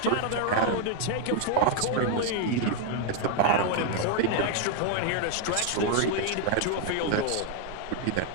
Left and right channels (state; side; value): different; both; correlation 0.00